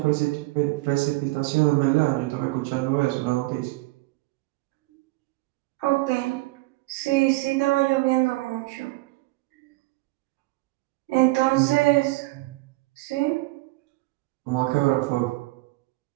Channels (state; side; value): quieter; left; 21.2 dB